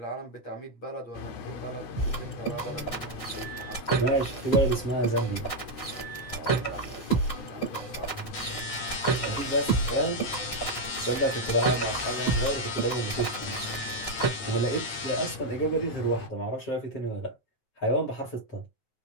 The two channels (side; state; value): right; late; 9.3 ms